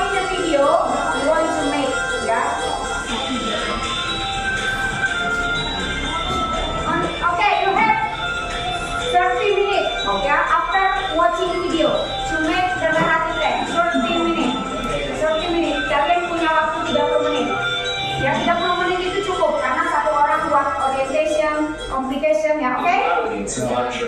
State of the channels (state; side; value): identical; both; correlation 1.00